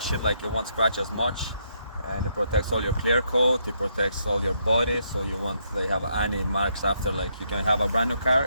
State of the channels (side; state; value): both; inverted; correlation -0.75